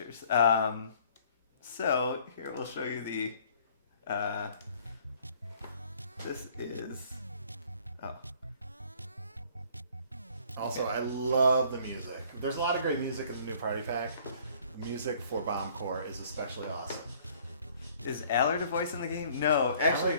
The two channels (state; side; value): inverted; both; correlation -0.57